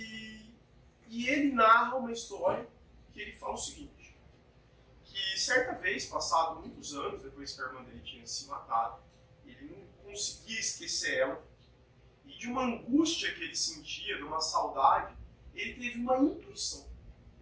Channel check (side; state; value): both; identical; correlation 1.00